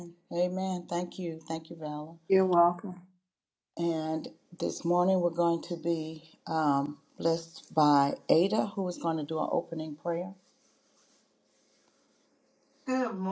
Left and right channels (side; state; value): both; identical; correlation 1.00